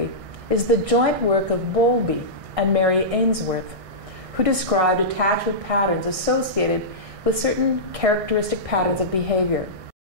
is the joint work of Bowlby and Mary Ainsworth, who described attachment patterns associated with certain characteristic patterns of behavior.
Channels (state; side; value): late; left; 1.6 ms